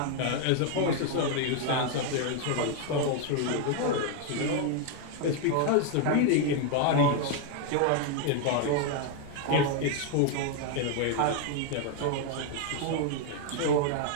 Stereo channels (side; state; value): both; different; correlation 0.01